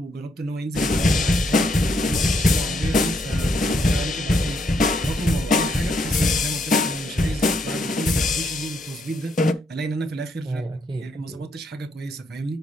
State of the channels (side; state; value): both; normal; correlation 0.75